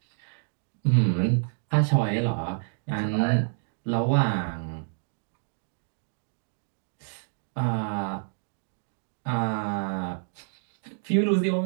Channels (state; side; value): silent; left; digital silence